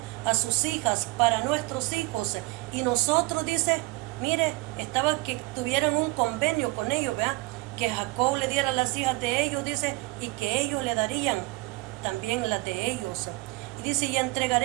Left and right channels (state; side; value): quieter; left; 22.4 dB